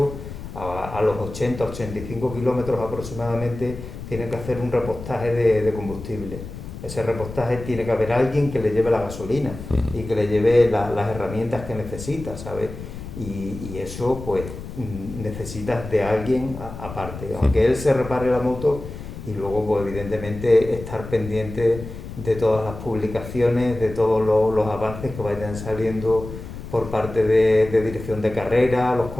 a los 80-85 kilómetros aproximadamente, tienen que hacer un repostaje de combustible. Ese repostaje tiene que haber alguien que le lleve la gasolina y que le lleve las herramientas que necesita, ¿sabes? Y eso, pues, necesitas de alguien aparte. Aunque él se repare la moto y luego, pues, evidentemente, estar pendiente de todas las publicaciones, de todos los avances que vayan saliendo por parte de dirección de carrera, los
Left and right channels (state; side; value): noise; left; rumble, 11 dB below the sound